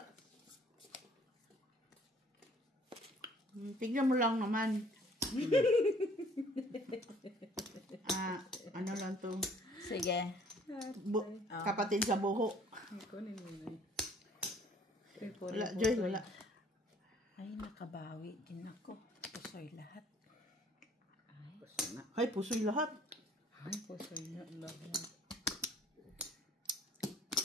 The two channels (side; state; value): both; normal; correlation 0.57